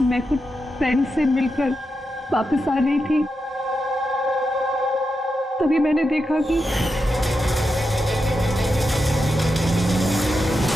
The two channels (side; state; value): both; normal; correlation 0.87